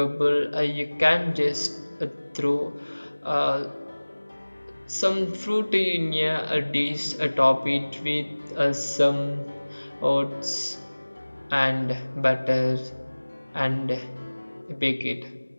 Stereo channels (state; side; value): inverted; both; correlation -1.00